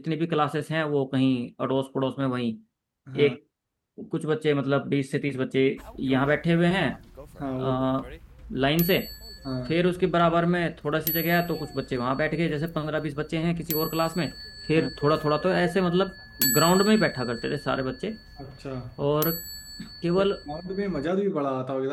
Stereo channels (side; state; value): both; identical; correlation 1.00